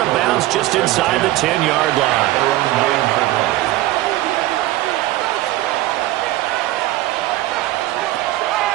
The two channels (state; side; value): quieter; left; 16.5 dB